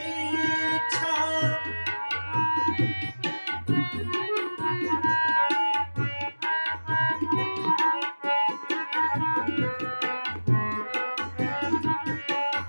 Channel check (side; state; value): both; inverted; correlation -1.00